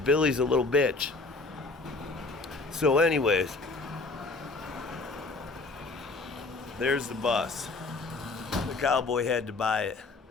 a little bitch. So anyways, there's the bus. The Cowboy had to buy it.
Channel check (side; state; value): right; quieter; 3.7 dB